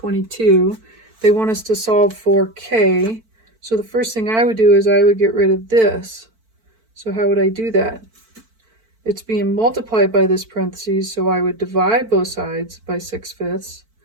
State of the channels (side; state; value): left; late; 4.5 ms